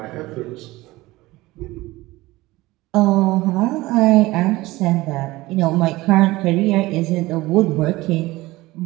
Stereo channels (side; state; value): left; quieter; 19.3 dB